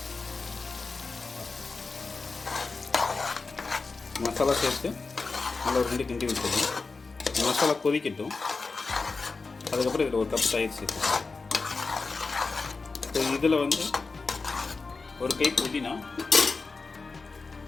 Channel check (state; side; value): quieter; right; 4.1 dB